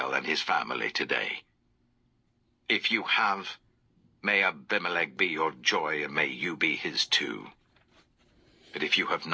and his family today? If you have, may Abimelech be your joy, and may you be his too. But if you have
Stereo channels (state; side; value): identical; both; correlation 1.00